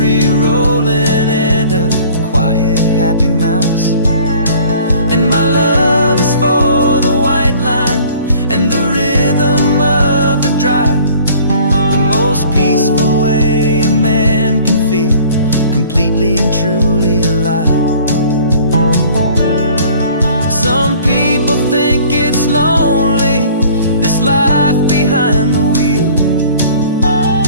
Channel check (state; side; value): inverted; both; correlation -0.51